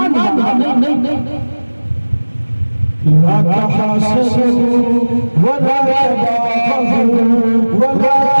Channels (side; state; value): both; inverted; correlation -1.00